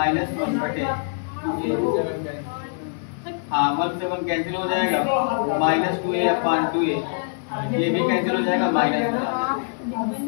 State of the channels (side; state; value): right; silent; digital silence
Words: 1 बटे 2a। हाँ 1 से 1 कैंसिल हो जाएगा, माइनस 2a अपॉन 2a, ये भी कैंसिल हो जाएगा, माइनस